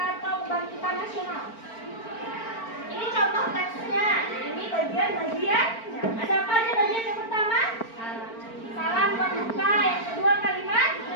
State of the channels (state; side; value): late; right; 4.4 ms